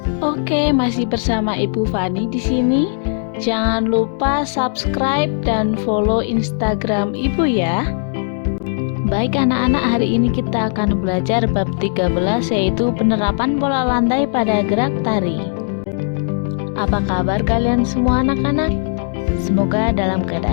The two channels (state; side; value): silent; right; digital silence